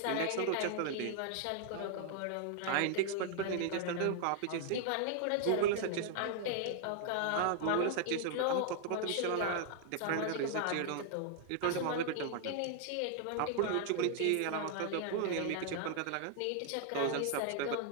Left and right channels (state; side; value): different; both; correlation 0.00